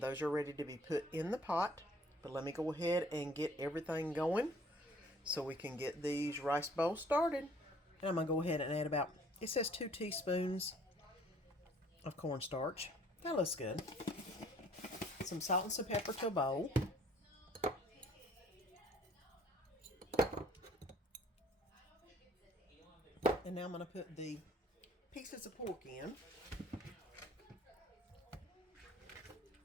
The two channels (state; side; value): normal; both; correlation 0.57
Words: are ready to be put in the pot. But let me go ahead and get everything going so we can get these rice bowls started. And I'm going to go ahead and add about, it says 2 teaspoons of cornstarch. That looks good. Some salt and some pepper to a bowl. And now I'm going to put the pieces of pork in.